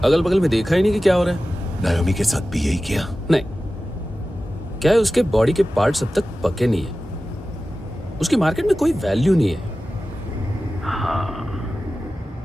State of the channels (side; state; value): both; normal; correlation 0.95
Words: अगल बगल में देखा ही नहीं कि क्या हो रहा है। नायोमी के साथ भी यही किया? नहीं, क्या है उसके बॉडी के पार्ट्स अब तक पके नहीं है। उसकी मार्केट में कोई वैल्यू नहीं है। हाँ,